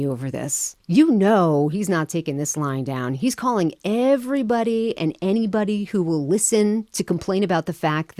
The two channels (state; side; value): identical; both; correlation 1.00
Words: over this? You know he's not taking this lying down. He's calling everybody and anybody who will listen to complain about the fact